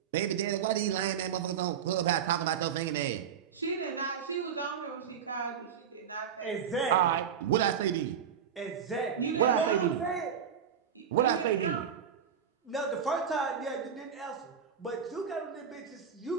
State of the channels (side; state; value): left; quieter; 7.8 dB